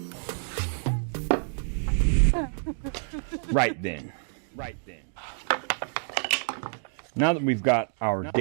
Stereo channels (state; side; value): silent; left; digital silence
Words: Right then. Now that we've got our